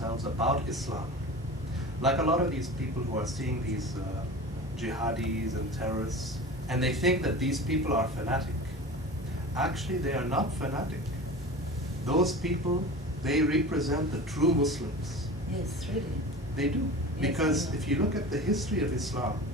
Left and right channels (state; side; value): normal; both; correlation 0.34